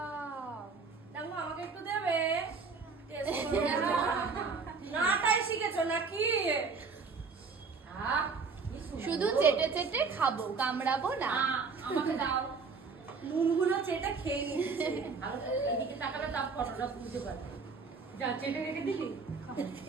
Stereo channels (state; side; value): quieter; left; 4.8 dB